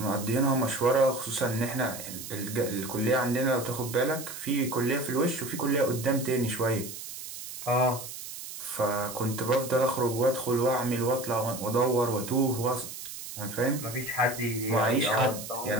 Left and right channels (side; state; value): right; noise; hiss, 10 dB below the sound